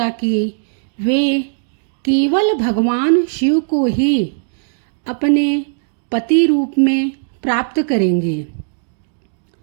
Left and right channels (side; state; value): left; silent; digital silence